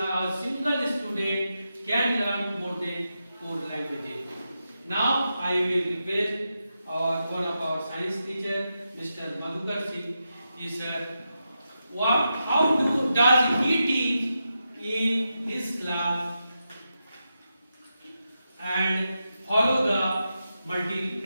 single student can learn more than 4 languages. Now I will request one of our science teacher, Mr. Madhukar Singh, is how does he teach in his class and follow the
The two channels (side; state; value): both; inverted; correlation -0.88